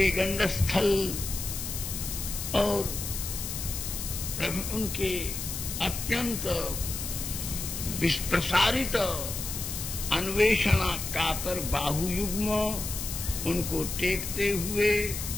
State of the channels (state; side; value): noise; left; hiss, 5 dB below the sound